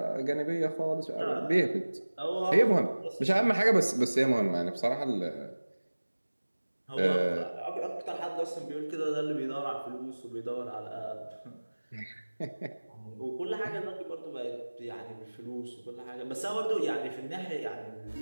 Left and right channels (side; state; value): both; inverted; correlation -1.00